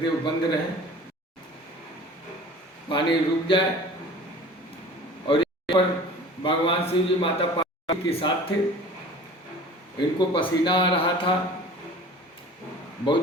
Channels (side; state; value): both; normal; correlation 0.43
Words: बंद रहे, पानी रुक जाए। और यहाँ पर भगवान शिव जी माता पार्वती के साथ थे। इनको पसीना आ रहा था,